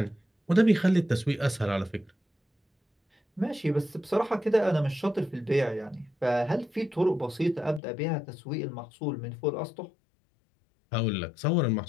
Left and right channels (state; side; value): drops out; right; at 7.8 s